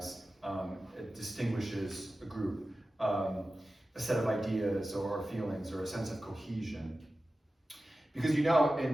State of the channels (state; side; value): normal; both; correlation 0.94